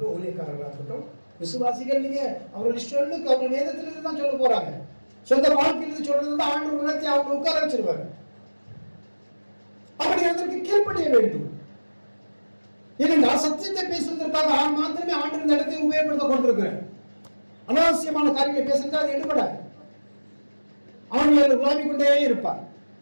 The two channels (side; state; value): both; inverted; correlation -1.00